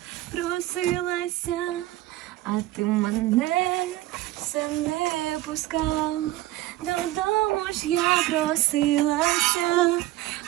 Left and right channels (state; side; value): quieter; left; 16.2 dB